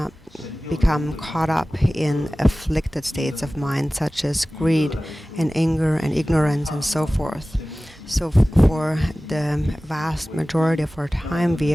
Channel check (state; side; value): normal; both; correlation 0.97